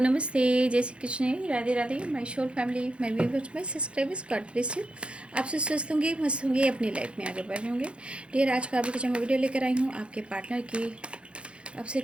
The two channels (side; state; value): left; late; 0.058 ms